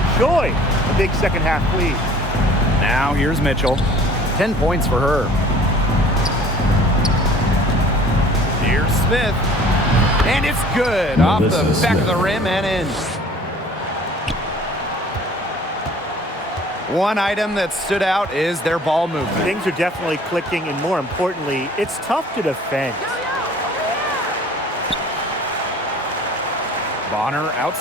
a big second half lead. Now here's Mitchell. 10 points for her. Here's Smith. And it's good. Off the back of the rim and in. One item that stood out is their ball movement. Things are definitely clicking, and more importantly, it's tough to defend. Bonner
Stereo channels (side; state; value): both; normal; correlation 0.50